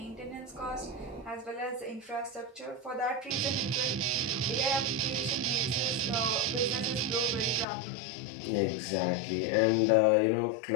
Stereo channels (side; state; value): right; drops out; at 7.7 s